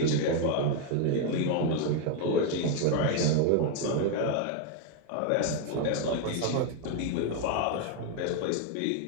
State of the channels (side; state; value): both; different; correlation 0.01